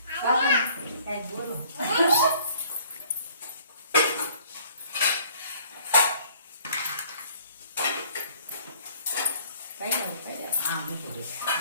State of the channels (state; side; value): inverted; both; correlation -0.57